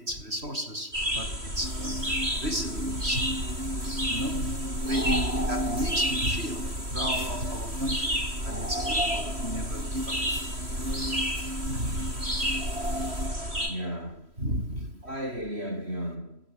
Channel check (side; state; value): left; late; 3.1 ms